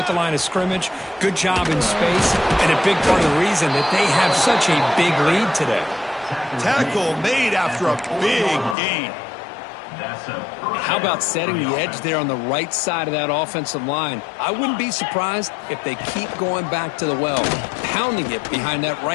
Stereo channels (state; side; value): drops out; right; at 8.8 s